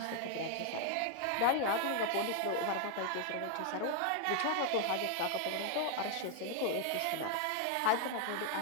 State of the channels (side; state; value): both; different; correlation 0.00